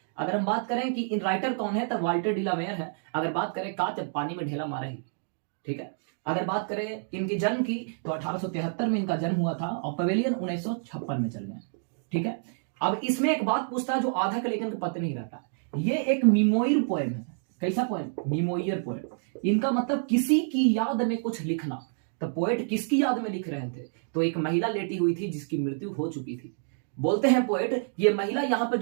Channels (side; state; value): left; silent; digital silence